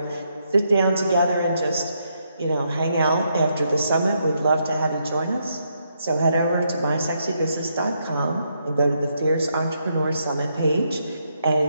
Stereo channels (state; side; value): inverted; both; correlation -0.78